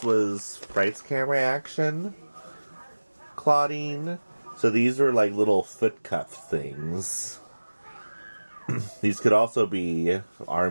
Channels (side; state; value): both; inverted; correlation -1.00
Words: was Fright's Camera Action Claudine. So these were like little foot cuff things. These could also be